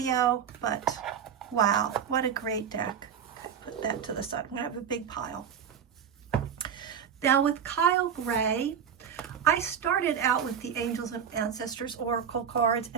but wow, what a great deck. Okay, put that to the side. I'm going to have a big pile. Now with Kyle Gray, I started out with the Angels and Ancestors Oracle cards,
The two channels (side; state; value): left; quieter; 7.9 dB